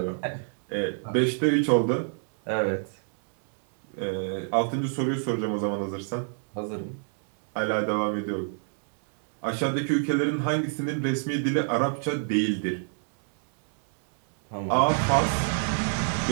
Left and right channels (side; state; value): left; silent; 58 dB below the other